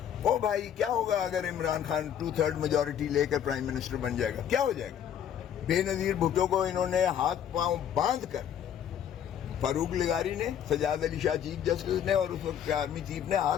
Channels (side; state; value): right; quieter; 9.4 dB